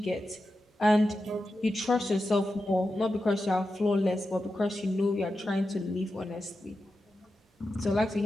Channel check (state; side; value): normal; both; correlation 0.91